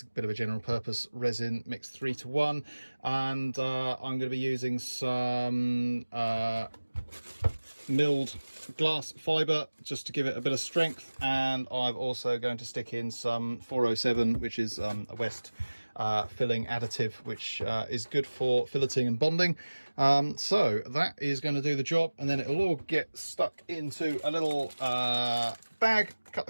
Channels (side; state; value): both; inverted; correlation -1.00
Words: a bit of a general purpose resin, mixed 3:1. And I'm going to be using some milled glass fibre just to give it a bit of strength. And I'm also going to stick in some 407, which is a West filling additive, which is good for filleting and bonding. So that is going to do the job, and then it'll all get stuck into a little bag, cut